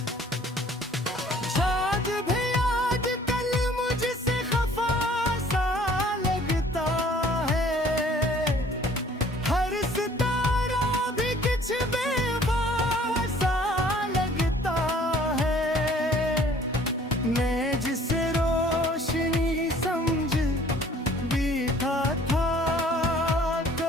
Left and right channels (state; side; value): normal; both; correlation 0.55